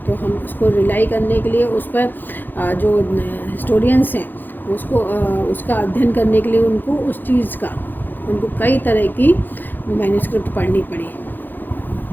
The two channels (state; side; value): late; right; 0.089 ms